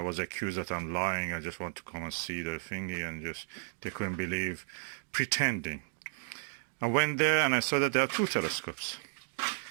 was accused that I'm lying. I just want to come and see the thingy, and just they couldn't believe, pretending. I went there and I saw that there are two telescopes.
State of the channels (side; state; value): left; silent; digital silence